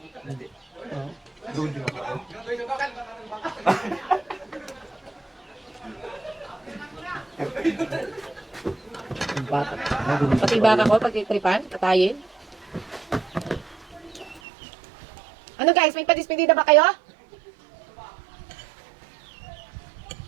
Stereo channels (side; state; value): left; drops out; at 14.4 s